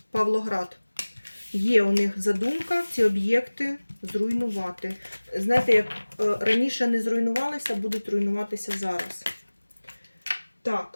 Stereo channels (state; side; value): inverted; both; correlation -1.00